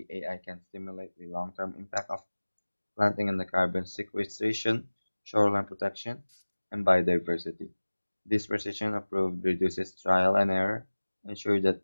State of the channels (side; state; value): both; inverted; correlation -1.00